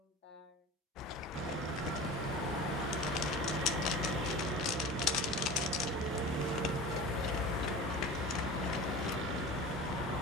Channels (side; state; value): both; normal; correlation 0.35